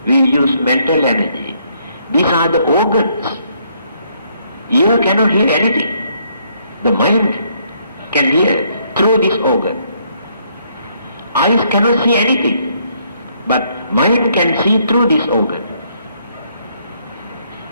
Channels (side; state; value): both; inverted; correlation -0.70